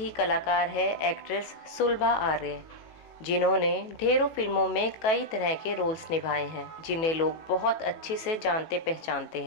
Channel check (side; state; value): right; late; 18 ms